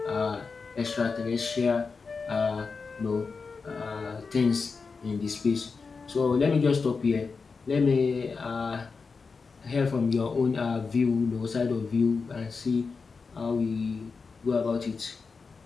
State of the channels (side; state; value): right; quieter; 4.8 dB